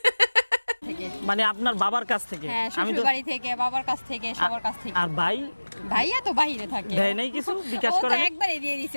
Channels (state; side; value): inverted; both; correlation -1.00